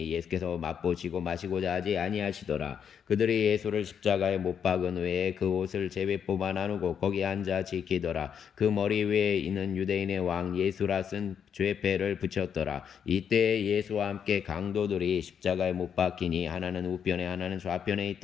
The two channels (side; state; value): right; quieter; 7.8 dB